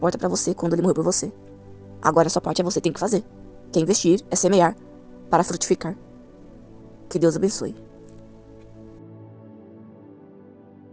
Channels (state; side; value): identical; both; correlation 1.00